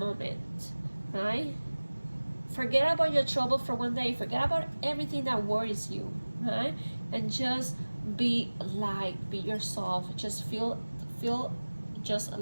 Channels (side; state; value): both; inverted; correlation -1.00